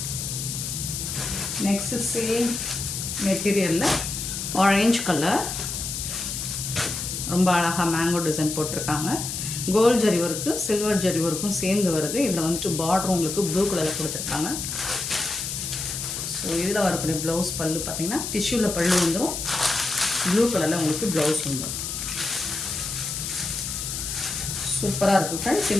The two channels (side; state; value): left; noise; hiss, 4 dB below the sound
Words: நெக்ஸ்ட்டு சேம் மெட்டீரியலில் ஆரஞ்ச் கலர். ரொம்ப அழகாக மேங்கோ டிசைன் போட்டிருக்காங்க. Gold zari work silver zari ஒர்க்கும் சேர்ந்து வருது. இதில் வந்துட்டு பார்டர் உங்களுக்கு ப்ளூ கலரில் கொடுத்துருக்காங்க. ஸோ இதில் வரக்கூடிய ப்ளவுஸ் பல்லு பார்த்திங்கன்னா டிஷ்யூவில் பல்லு வந்துடும். ப்ளூ கலரில் உங்களுக்கு ப்ளவுஸ் வந்துடும். சூப்பராக இருக்குது ஃப்ரெண்ட்ஸ்.